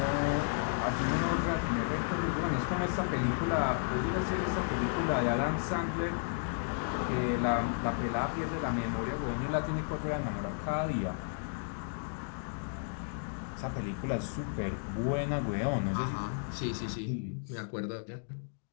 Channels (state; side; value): silent; right; digital silence